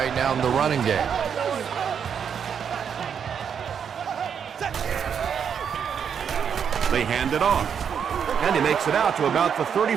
now in the running game. They hand it off. And he makes it out to about the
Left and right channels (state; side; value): quieter; left; 7.5 dB